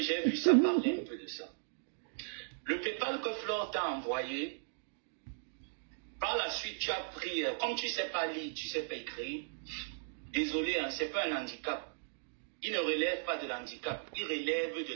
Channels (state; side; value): silent; left; digital silence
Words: j'ai vu ça parler un peu de ça. Le PayPal que Flore t'a envoyé, par la suite, tu as pris, comme tu ne sais pas lire, tu ne sais pas écrire, désolé, hein, ce n'est pas un handicap. Il ne relève pas de l'handicap, il relève de